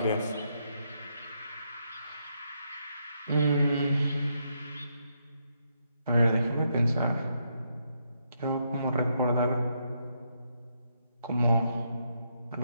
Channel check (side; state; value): both; inverted; correlation -0.78